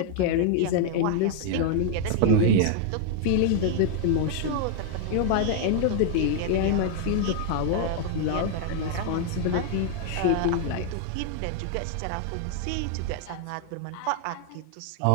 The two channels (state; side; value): different; both; correlation 0.00